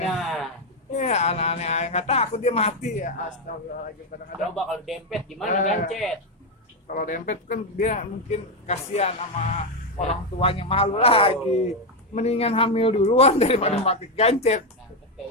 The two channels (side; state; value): both; normal; correlation 0.06